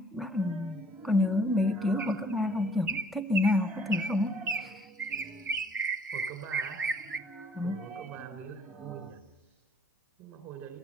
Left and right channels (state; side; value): normal; both; correlation 0.60